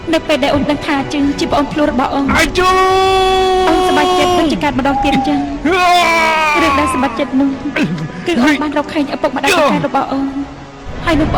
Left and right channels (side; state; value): both; identical; correlation 1.00